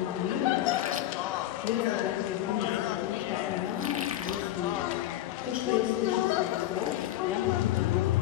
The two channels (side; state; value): right; quieter; 13.7 dB